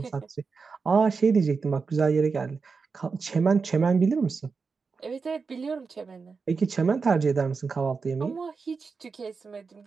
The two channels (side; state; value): left; quieter; 4.9 dB